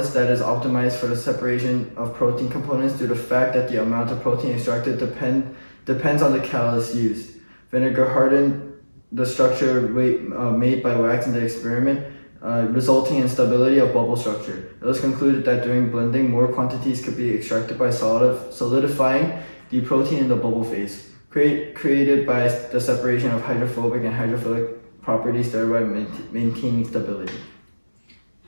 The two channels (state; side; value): inverted; both; correlation -1.00